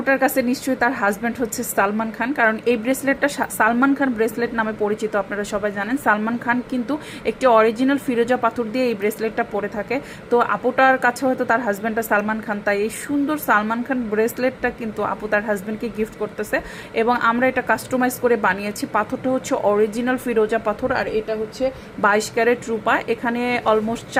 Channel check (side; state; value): both; identical; correlation 1.00